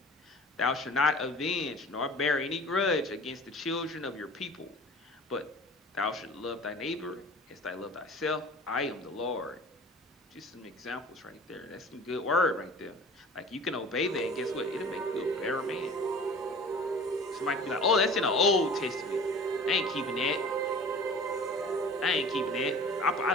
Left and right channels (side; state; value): both; normal; correlation 0.43